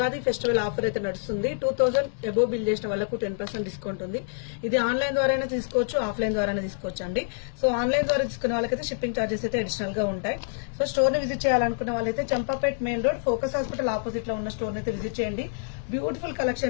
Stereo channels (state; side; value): silent; right; digital silence